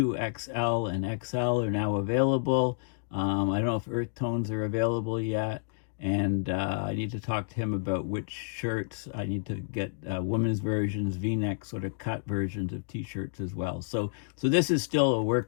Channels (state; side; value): silent; right; digital silence